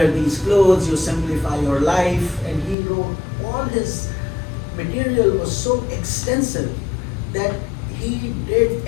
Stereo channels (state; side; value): drops out; right; at 2.8 s